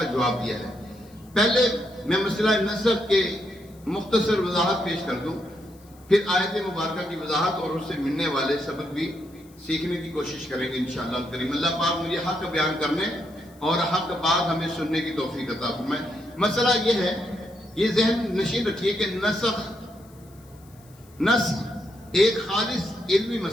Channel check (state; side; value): noise; left; hiss, 28 dB below the sound